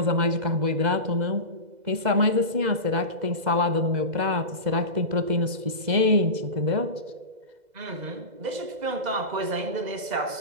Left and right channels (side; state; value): left; late; 2.0 ms